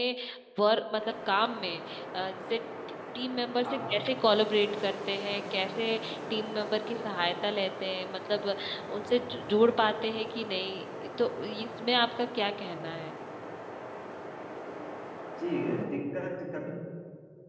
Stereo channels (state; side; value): identical; both; correlation 1.00